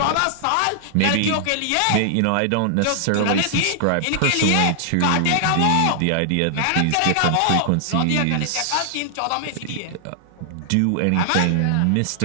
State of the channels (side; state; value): both; different; correlation 0.00